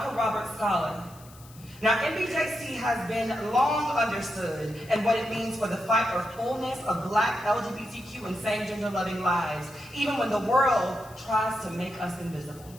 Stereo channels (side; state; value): left; noise; hiss, 22 dB below the sound